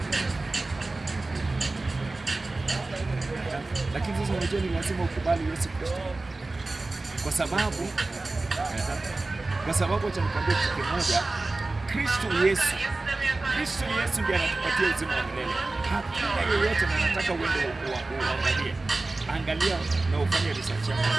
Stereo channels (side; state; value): left; quieter; 3.2 dB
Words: Lakini sasa unajua ni lazima ukubali Yesu Kristo. Kwa sababu acha nikwambie kitu kimoja, Kristo Yesu ndiye anatupatia uzima wa milele. Hakuna yeyote anataka uende uangalie. Angalia na ufanye research yako